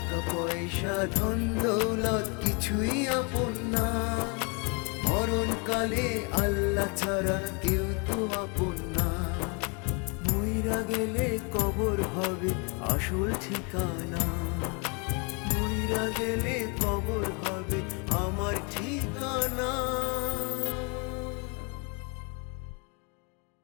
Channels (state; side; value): quieter; right; 33.9 dB